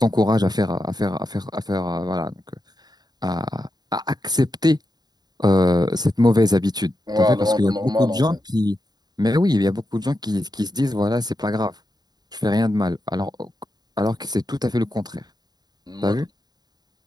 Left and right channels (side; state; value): left; late; 0.20 ms